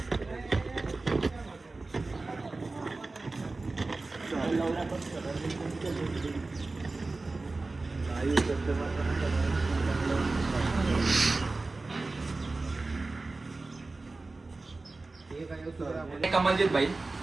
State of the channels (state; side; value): quieter; left; 3.4 dB